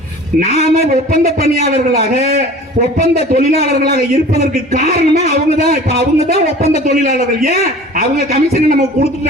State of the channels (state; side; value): normal; both; correlation 0.43